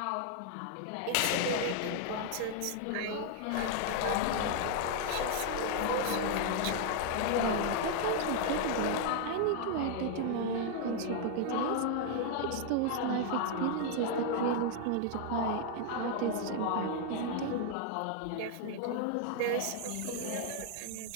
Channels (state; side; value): different; both; correlation 0.00